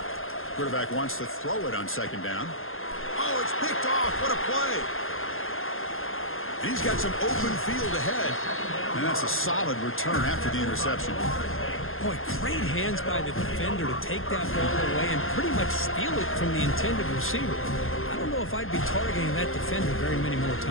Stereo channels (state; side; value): late; right; 0.60 ms